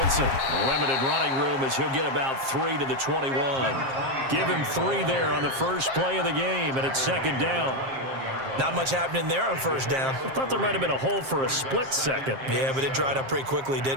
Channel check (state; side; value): late; left; 7.5 ms